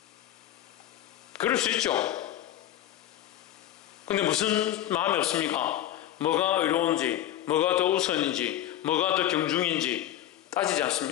그럴 수 있죠. 근데 무슨 마음이 없습니까? 뭐가 의로운지, 뭐가 더 우선인지, 뭐가 더 경중인지 따지지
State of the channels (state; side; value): quieter; right; 12.5 dB